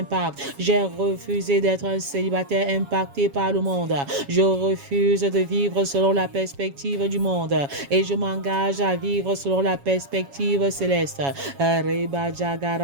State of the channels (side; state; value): left; late; 7.2 ms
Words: J'ai refusé d'être un célibataire impacté par le monde. Je refuse de vivre selon la perspective du monde et je m'engage à vivre selon la perspective céleste.